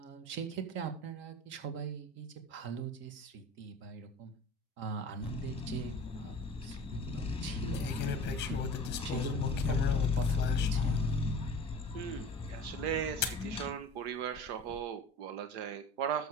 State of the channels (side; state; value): both; normal; correlation 0.39